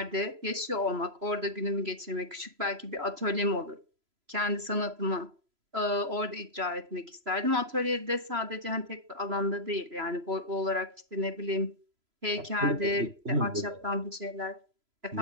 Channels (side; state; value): left; late; 3.0 ms